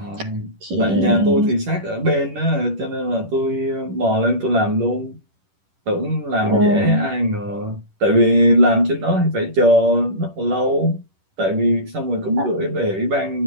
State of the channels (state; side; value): late; left; 10 ms